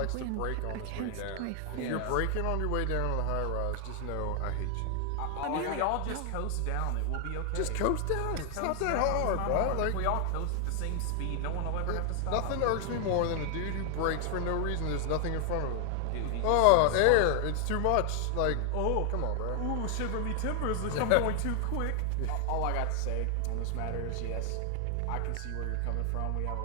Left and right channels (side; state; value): both; different; correlation 0.00